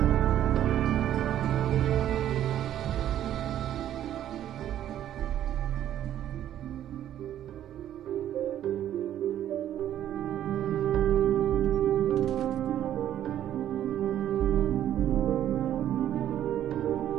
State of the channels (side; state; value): left; quieter; 11.4 dB